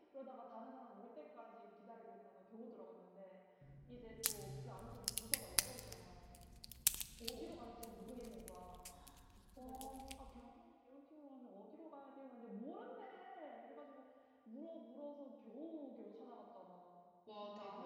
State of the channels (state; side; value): identical; both; correlation 1.00